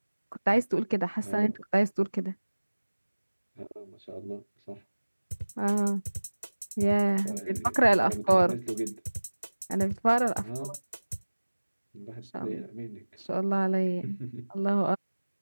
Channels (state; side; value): inverted; both; correlation -1.00